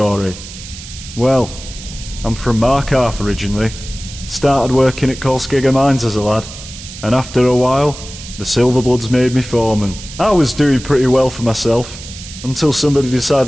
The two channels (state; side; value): noise; right; hiss, 14 dB below the sound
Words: Well, I'm from Markarth originally. Started working at Kolskegger Mines as a lad, and after a while, the Silverbloods made me foreman. I was doing pretty well for myself, until somebody